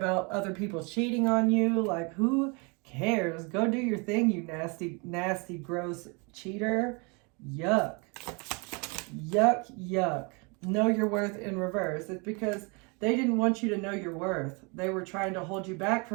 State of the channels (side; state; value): left; quieter; 31.7 dB